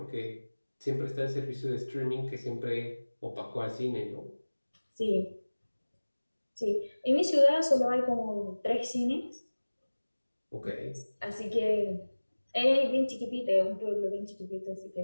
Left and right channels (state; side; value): inverted; both; correlation -1.00